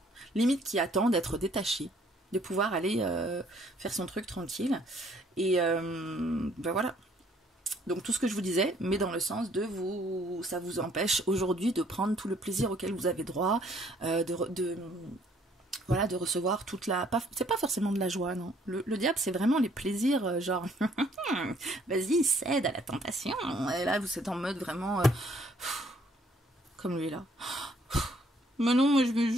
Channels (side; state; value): both; normal; correlation 0.63